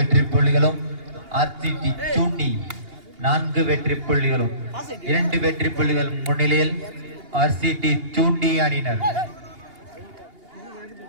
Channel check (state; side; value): late; left; 2.8 ms